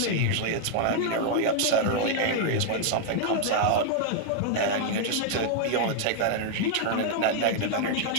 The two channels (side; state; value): both; different; correlation 0.00